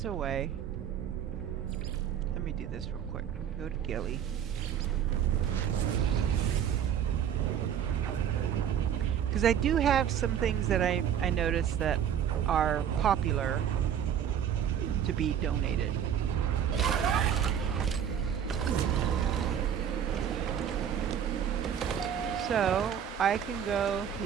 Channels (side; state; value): left; quieter; 9.1 dB